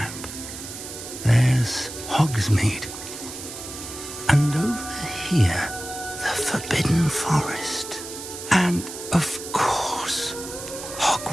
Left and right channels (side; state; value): right; noise; hiss, 10 dB below the sound